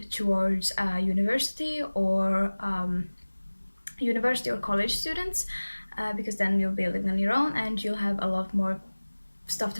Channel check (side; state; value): both; inverted; correlation -1.00